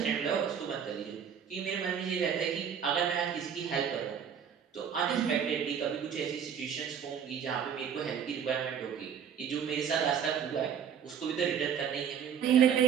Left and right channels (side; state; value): left; quieter; 7.8 dB